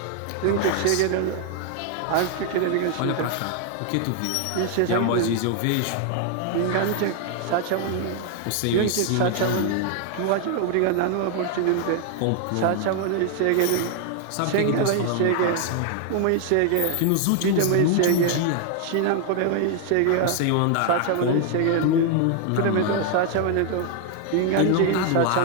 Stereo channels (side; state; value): both; different; correlation 0.00